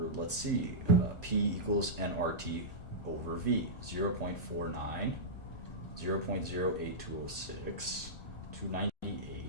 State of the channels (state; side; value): late; right; 1.4 ms